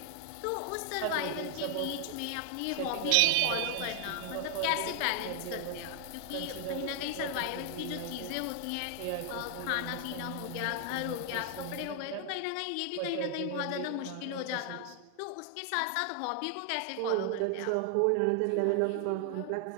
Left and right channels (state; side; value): different; both; correlation 0.00